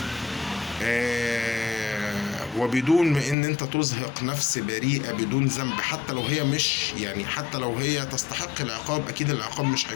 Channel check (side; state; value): right; drops out; at 3.4 s